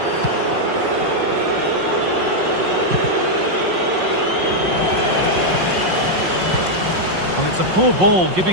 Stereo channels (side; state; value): left; late; 5.5 ms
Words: Well, it's a poor ball,